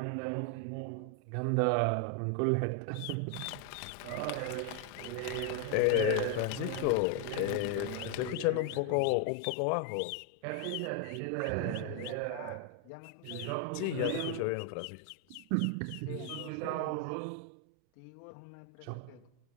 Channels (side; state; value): both; different; correlation 0.00